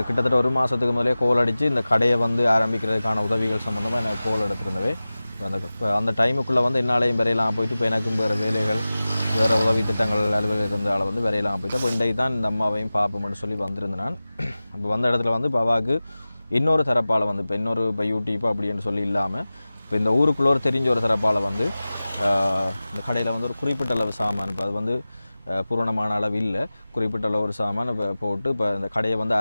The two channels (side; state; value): both; inverted; correlation -0.97